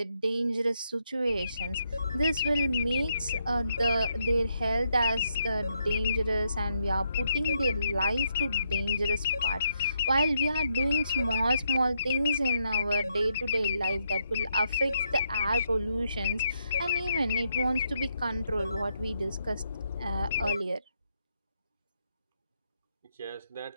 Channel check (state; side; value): inverted; both; correlation -0.78